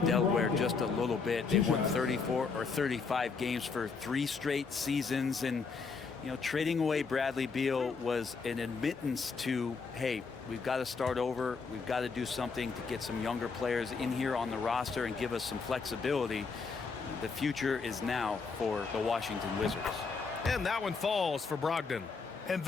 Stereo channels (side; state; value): right; quieter; 4.9 dB